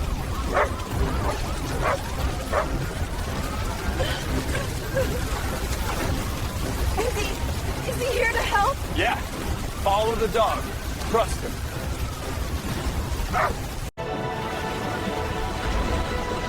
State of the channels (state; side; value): identical; both; correlation 1.00